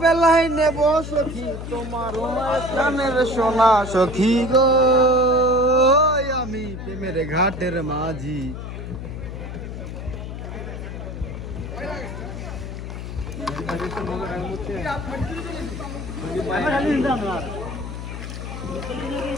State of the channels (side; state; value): left; noise; hum, 8 dB below the sound